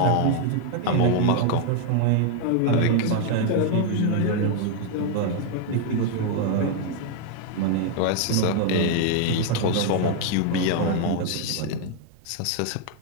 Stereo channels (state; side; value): different; both; correlation 0.00